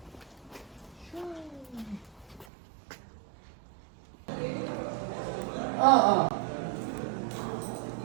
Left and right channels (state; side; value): drops out; left; at 2.5 s